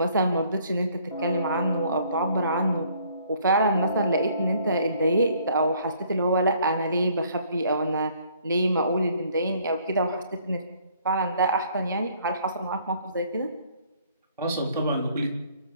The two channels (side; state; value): both; inverted; correlation -0.61